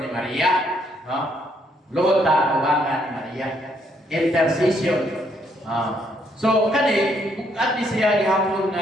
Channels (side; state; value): both; normal; correlation 0.71